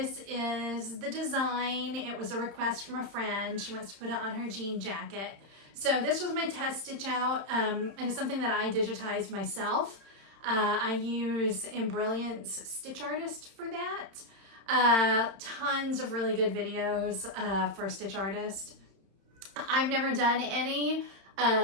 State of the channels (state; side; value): late; left; 31 ms